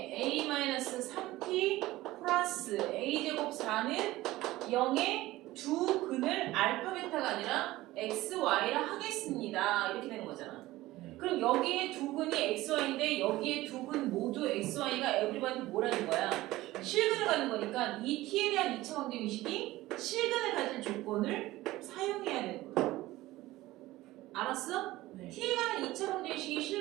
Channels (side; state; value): left; quieter; 17.4 dB